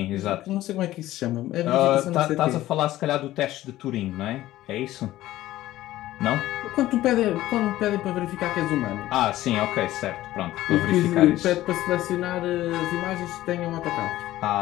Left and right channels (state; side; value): quieter; right; 15.2 dB